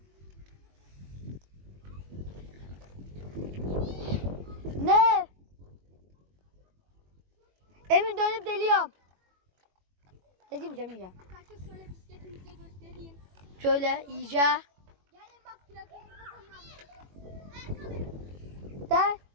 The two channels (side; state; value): left; late; 21 ms